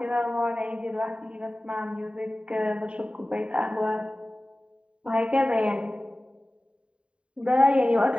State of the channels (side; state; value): left; late; 0.056 ms